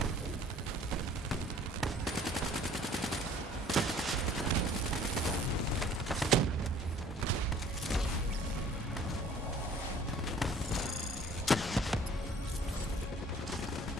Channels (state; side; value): normal; both; correlation 0.53